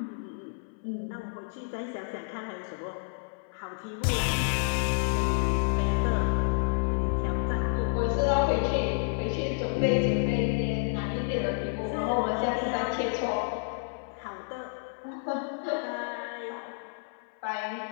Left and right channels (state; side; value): silent; right; 58 dB below the other